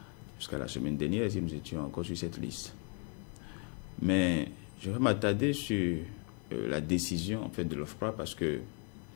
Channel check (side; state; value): right; quieter; 36.5 dB